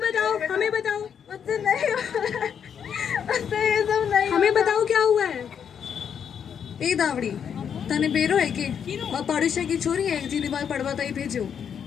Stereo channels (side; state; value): right; quieter; 7.8 dB